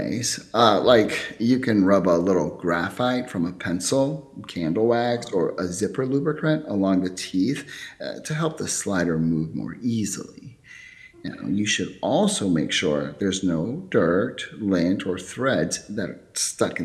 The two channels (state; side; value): identical; both; correlation 1.00